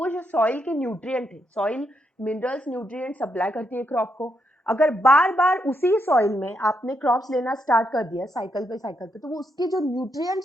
जो सॉइल के न्यूट्रिएंट है, सॉइल मिनरल्स न्यूट्रिएंट सप्लाई करती है क्रॉप को, अगर बार बार उसी सॉइल में आपने क्रॉप्स लेना स्टार्ट कर दिया साइकिल पे, तो वो उसके जो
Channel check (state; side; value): normal; both; correlation 0.79